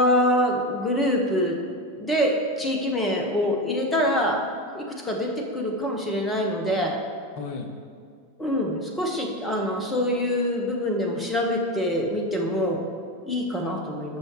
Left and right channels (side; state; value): both; normal; correlation 0.19